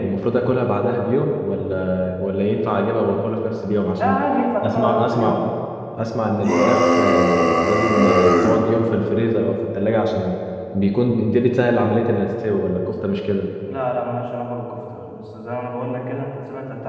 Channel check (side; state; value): both; identical; correlation 1.00